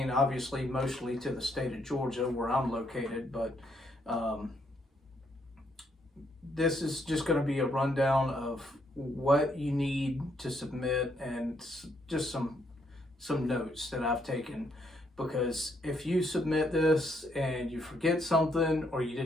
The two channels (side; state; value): both; normal; correlation 0.73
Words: obviously, mostly to the state of Georgia, where I'm located, but this is just going to be a rundown of what you need to submit and just some notes that I've taken, because if you submit this and you forget something or you